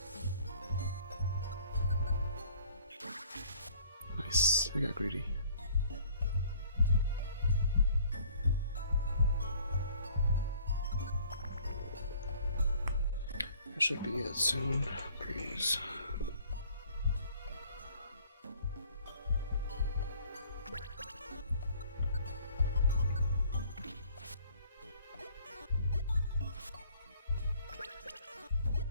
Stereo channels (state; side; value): inverted; both; correlation -0.55